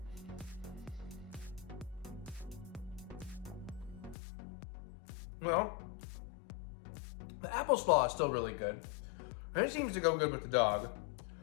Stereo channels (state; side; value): drops out; right; at 4.2 s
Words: Well, the apple slaw is still really good. And it seems to go good with the dog.